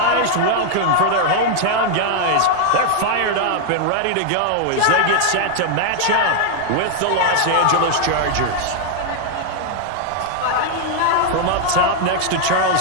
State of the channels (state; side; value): different; both; correlation 0.00